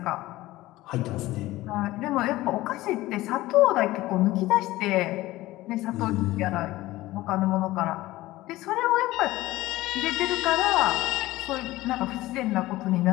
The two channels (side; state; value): right; quieter; 17.5 dB